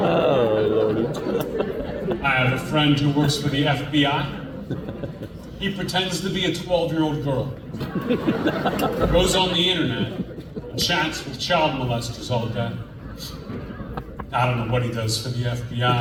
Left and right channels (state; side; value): identical; both; correlation 1.00